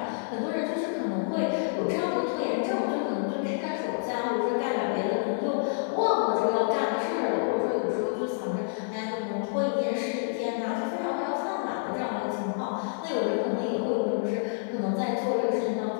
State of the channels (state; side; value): silent; right; 59 dB below the other